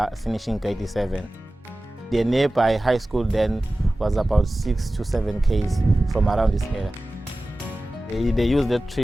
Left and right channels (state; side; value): normal; both; correlation 0.96